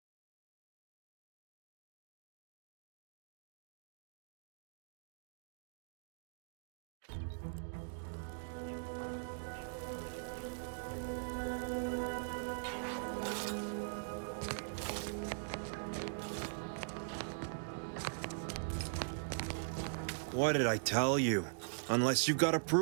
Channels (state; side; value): silent; left; digital silence